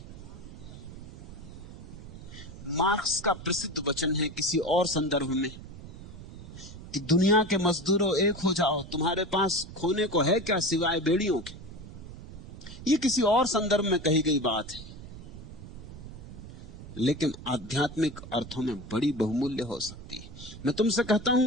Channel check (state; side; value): noise; right; rumble, 14 dB below the sound